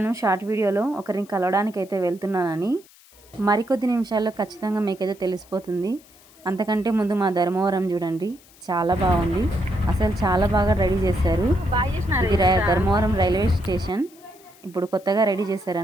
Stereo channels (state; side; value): noise; left; hiss, 26 dB below the sound